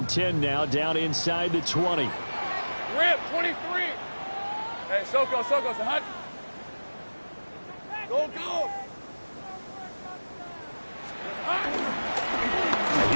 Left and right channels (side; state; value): both; inverted; correlation -1.00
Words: 10 now, down inside the 20. Rip, 23. Hey, Soko, so hot. Go.